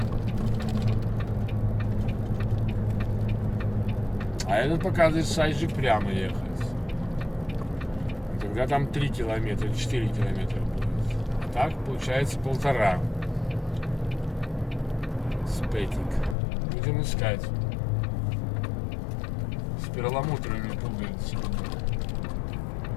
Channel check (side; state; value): right; drops out; at 16.4 s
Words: А этот показывает сайджи прямо ехать. Тогда там 3 километра, 4 километра будет. А так получается 1,5. Спетик. Будем искать. С перламутровыми пуговицами.